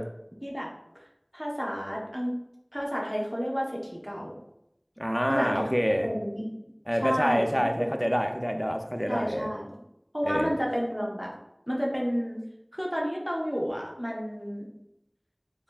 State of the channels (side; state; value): both; identical; correlation 1.00